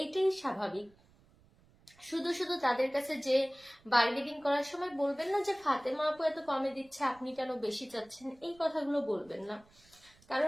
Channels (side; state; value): right; noise; rumble, 29 dB below the sound